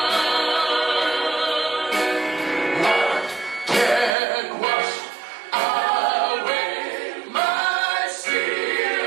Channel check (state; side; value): drops out; left; at 4.1 s